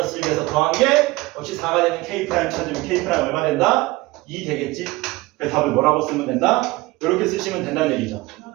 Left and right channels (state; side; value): quieter; left; 21.0 dB